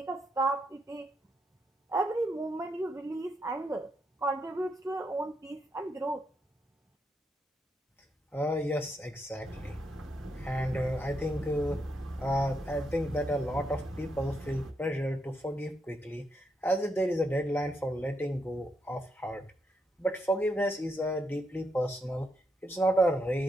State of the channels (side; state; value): both; normal; correlation 0.80